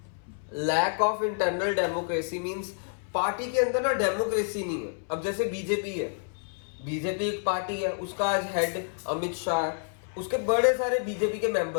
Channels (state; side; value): silent; right; 59 dB below the other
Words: Lack of internal democracy means party के अंदर ना डेमोक्रेसी नहीं है। अब जैसे बीजेपी है, बीजेपी एक पार्टी है, उसका आज हेड अमित शाह है, उसके बड़े सारे बीजेपी के